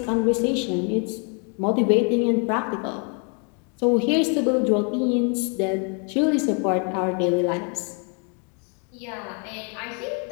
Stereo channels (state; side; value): quieter; right; 38.3 dB